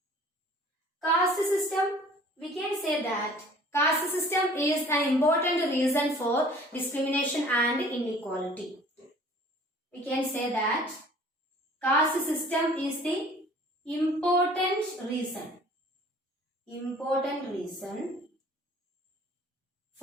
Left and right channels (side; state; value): both; normal; correlation 0.50